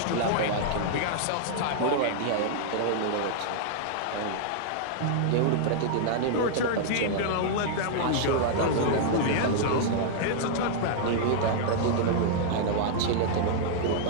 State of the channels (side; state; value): both; different; correlation -0.01